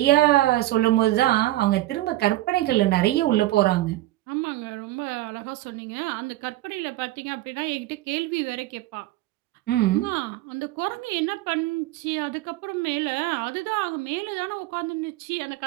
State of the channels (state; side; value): quieter; left; 16.7 dB